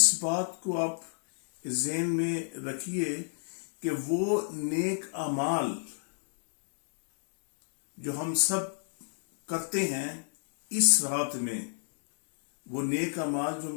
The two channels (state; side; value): silent; right; digital silence